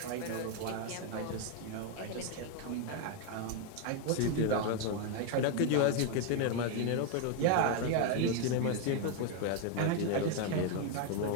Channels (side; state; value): both; different; correlation 0.01